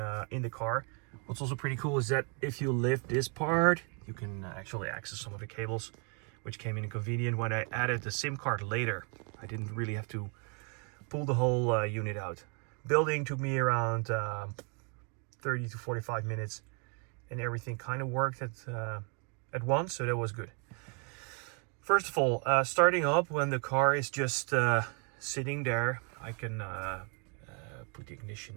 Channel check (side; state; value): left; quieter; 37.7 dB